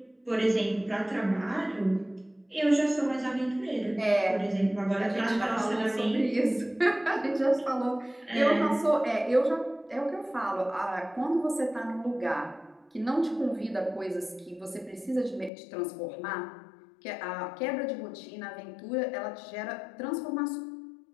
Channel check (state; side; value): drops out; right; at 15.5 s